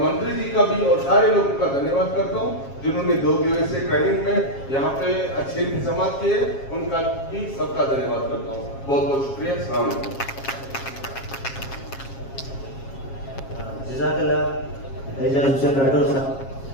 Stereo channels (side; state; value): right; late; 7.4 ms